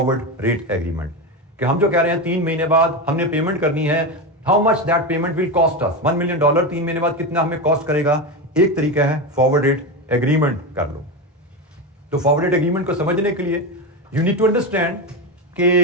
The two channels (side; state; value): both; normal; correlation 0.16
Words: रेट एग्रीमेंट, कि हम जो कह रहे हैं 3 महीने बाद हमने पेमेंट करनी है, how much that payment will cost us, $1 million 3 महीने बाद कितना हमें कॉस्ट करेगा। एक तरीका है फॉरवर्ड रेट एग्रीमेंट कर लो। तो फॉरवर्ड रेट एग्रीमेंट को समझने के लिए यू नीड टू अंडरस्टैंड कि